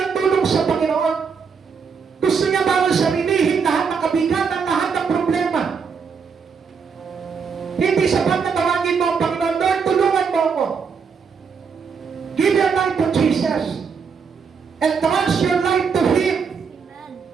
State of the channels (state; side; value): quieter; left; 5.9 dB